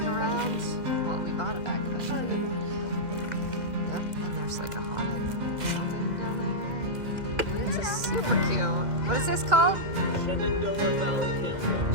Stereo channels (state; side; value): late; left; 2.0 ms